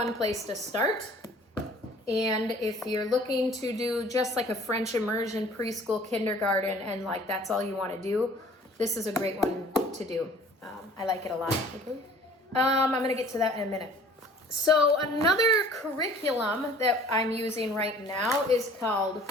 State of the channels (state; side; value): normal; both; correlation 0.51